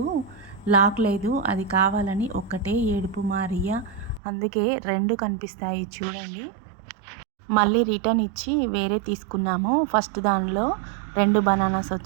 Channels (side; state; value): left; drops out; at 4.2 s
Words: లాక్ లేదు, అది కావాలని ఒక్కటే ఏడుపు మారియా. అందుకే 2 కనిపిస్తాయి చూడండి. మళ్ళీ రిటర్న్ ఇచ్చి వేరే తీసుకున్నాము. ఫస్ట్ దానిలో 2 బనానాస్